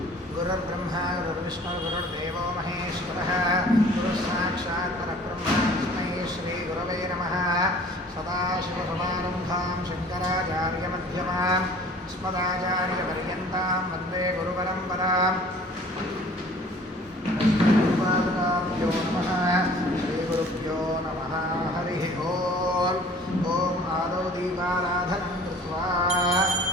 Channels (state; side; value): normal; both; correlation 0.50